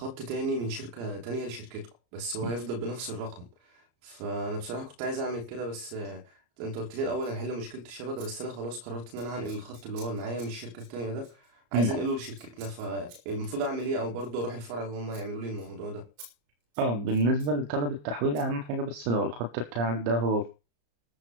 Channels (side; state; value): left; late; 34 ms